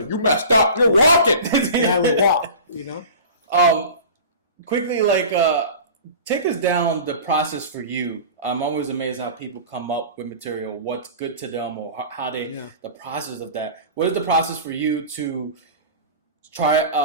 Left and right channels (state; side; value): inverted; both; correlation -0.37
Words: you messed up, you're walking. And I would walk, Quickly, take us down the process for you. I'm always amazed how people come up with material, what's good to them, or how the process of that. What is the process for you to